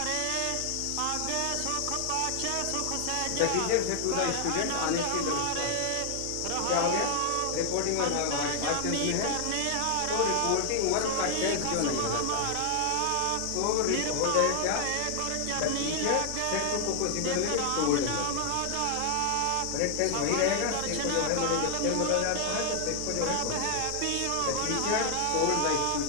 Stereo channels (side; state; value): both; different; correlation 0.00